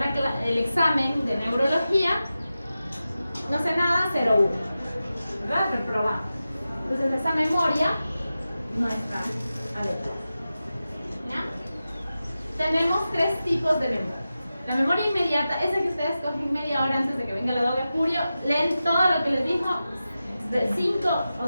el examen de neurología, no sé nada, 0-1, ¿verdad? Reprobado. Entonces esa memoria no está adecuada. tenemos tres tipos de memoria. La memoria inmediata, esa que ustedes cogen media hora antes de que venga la doble furio, leen todo lo que les dijo de 5,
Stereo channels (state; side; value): inverted; both; correlation -0.93